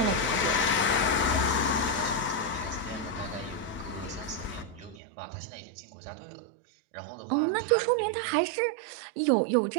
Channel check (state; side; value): drops out; left; at 5.0 s